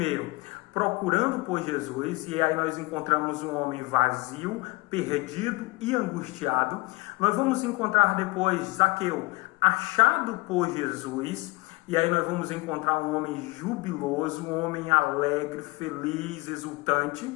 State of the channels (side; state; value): right; quieter; 24.4 dB